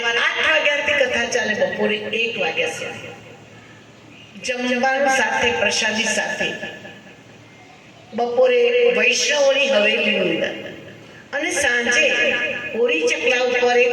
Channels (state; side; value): identical; both; correlation 1.00